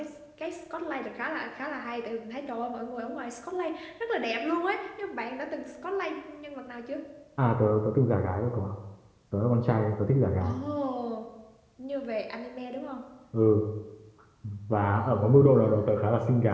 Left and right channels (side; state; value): both; identical; correlation 1.00